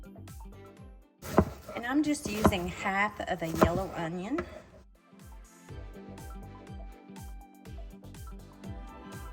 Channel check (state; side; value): identical; both; correlation 1.00